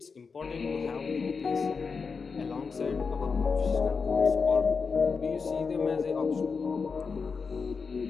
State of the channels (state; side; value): quieter; right; 5.1 dB